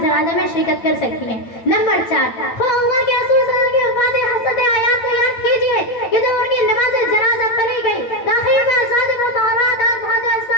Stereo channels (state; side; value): late; right; 8.9 ms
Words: جنازہ میں شرکت کر سکتی ہیں. نمبر 4، اللہ کے رسول صلی اللہ علیہ وسلم کی وفات حسرت آیات کو یاد کیجیے کہ جب ان کی نماز جنازہ پڑھی گئی تاخیر میں ازواج مطہرات اور مہاجر